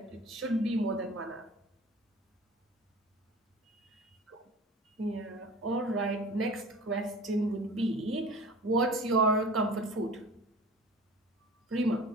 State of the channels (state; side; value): normal; both; correlation 0.41